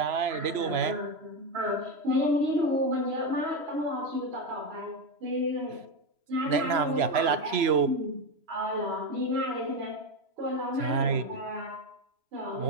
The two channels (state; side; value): late; left; 3.0 ms